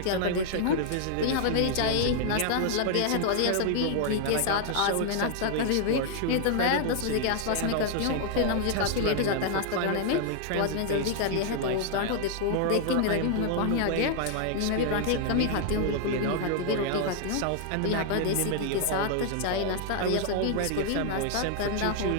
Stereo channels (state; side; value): different; both; correlation 0.00